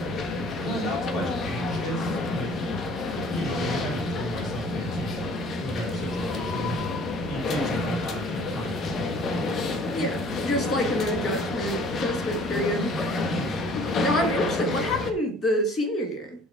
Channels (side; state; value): both; normal; correlation 0.53